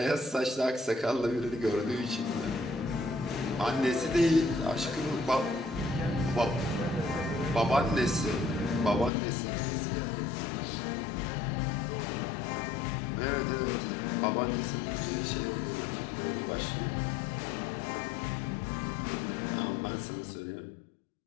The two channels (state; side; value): drops out; right; at 9.1 s